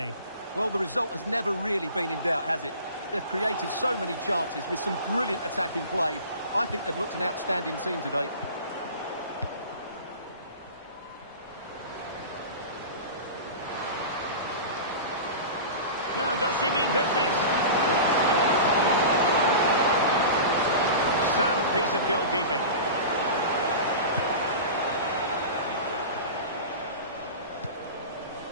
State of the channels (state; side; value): inverted; both; correlation -0.33